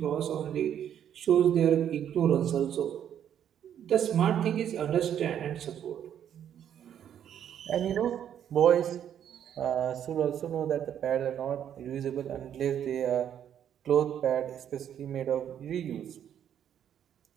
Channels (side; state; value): left; quieter; 9.6 dB